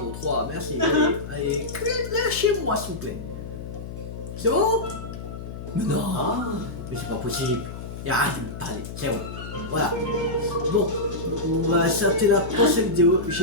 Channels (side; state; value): left; noise; hum, 9 dB below the sound